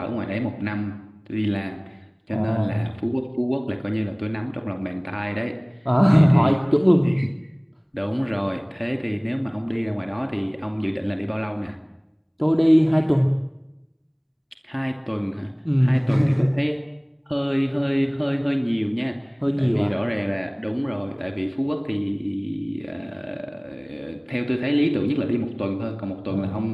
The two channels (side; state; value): both; identical; correlation 1.00